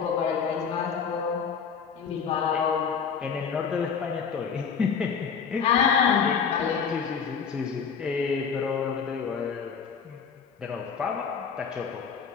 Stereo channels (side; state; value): right; quieter; 6.4 dB